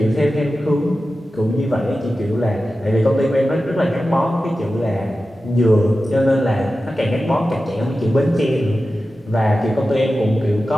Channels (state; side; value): normal; both; correlation 0.93